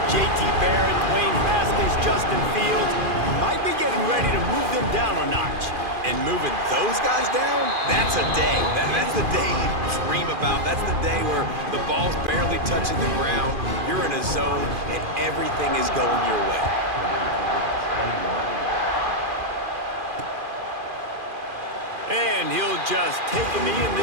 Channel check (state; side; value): late; left; 2.4 ms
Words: J.T. Barrett, Dwayne Haskins, Justin Fields. Might be getting ready to move them down a notch. And moving those guys down, that's a day. That's the day you dream about. That's the day where the ball's barely touching the ground, you're in a zone, and everything is going your way. And he'll just take a knee, and